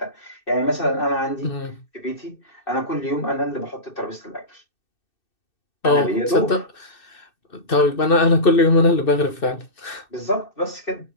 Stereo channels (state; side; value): late; right; 2.6 ms